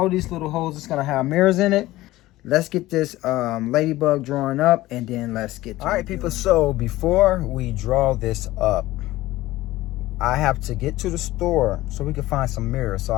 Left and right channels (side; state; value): right; quieter; 17.1 dB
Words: these little holes is gonna have mirrors in it. Let's get this ladybug drawn up and then let's get to it. All right, people, so before we draw this up, I have to get to the store so we can find some mirrors so